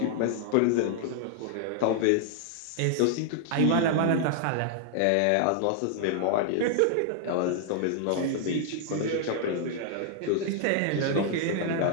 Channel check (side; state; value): both; different; correlation 0.00